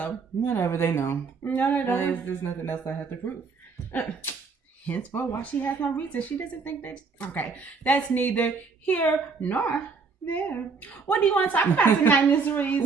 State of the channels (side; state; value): left; quieter; 4.9 dB